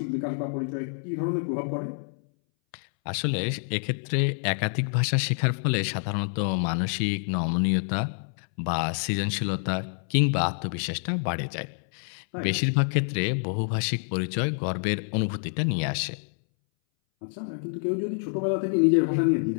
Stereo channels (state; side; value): silent; right; 60 dB below the other